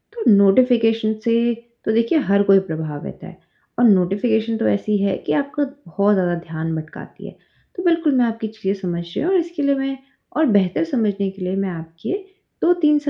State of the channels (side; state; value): both; identical; correlation 1.00